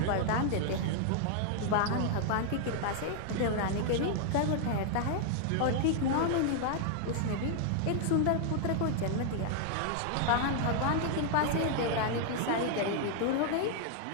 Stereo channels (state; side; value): different; both; correlation 0.00